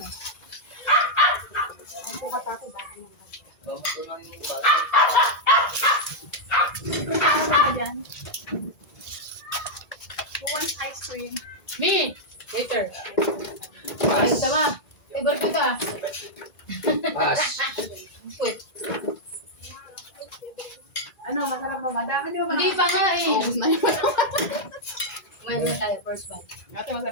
Ang pukat ako, baka naman. Ano ka dyan? Who wants ice cream? Me! Later. Ayos ka ba? Favorite ko ka. Pass. Wait. Ano, masarap ba? Madami di ba? Hindi pa nga eh. Ubus na yun. Kumain na tayo, first bite. Ate,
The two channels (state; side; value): late; right; 2.0 ms